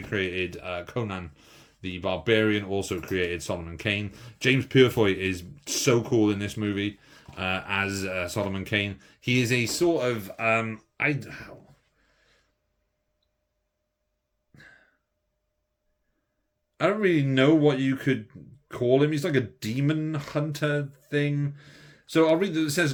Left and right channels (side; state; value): both; identical; correlation 1.00